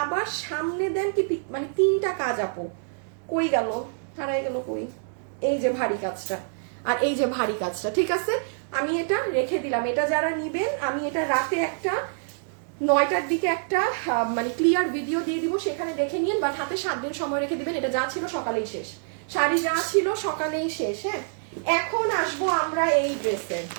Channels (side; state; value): left; silent; digital silence